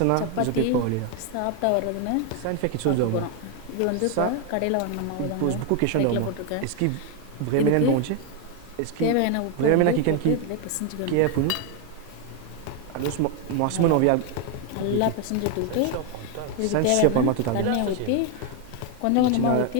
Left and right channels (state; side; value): different; both; correlation 0.01